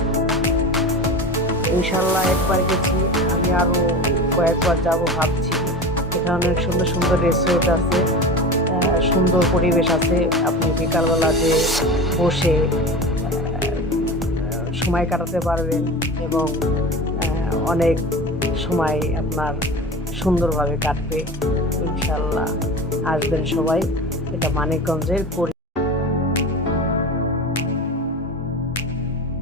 ইনশাল্লাহ একবার গেছি, আমি আরও কয়েকবার যাব ভাবছি। এখানে অনেক সুন্দর সুন্দর রিসোর্ট আছে, সুন্দর পরিবেশ আছে। আপনি বিকালবেলা যে বসে সময় কাটাতে পারবেন এবং অনেক সময় আপনার সুন্দরভাবে কাটবে। ইনশাল্লাহ আসবেন সবাই। এটা মানিকগঞ্জের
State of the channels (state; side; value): normal; both; correlation 0.30